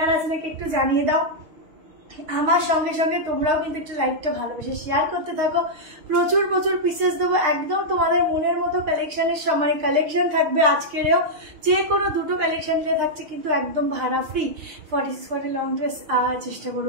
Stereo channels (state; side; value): late; left; 6.5 ms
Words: আছে নাকি একটু জানিয়ে দাও। আমার সঙ্গে সঙ্গে তোমরাও কিন্তু একটু লাইভটা ভালোবেসে শেয়ার করতে থাকো। প্রচুর প্রচুর পিসেস দেবো, একদম তোমাদের মনের মতো কালেকশনের সময় কালেকশন থাকবে। আজকেরও যে কোনো দুটো কালেকশন থাকছে কিন্তু একদম ভাড়া ফ্রি। 46 লং ড্রেস চেষ্টা